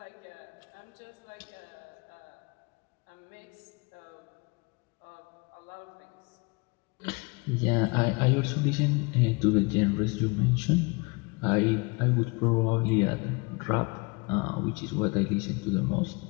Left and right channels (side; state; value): right; quieter; 28.3 dB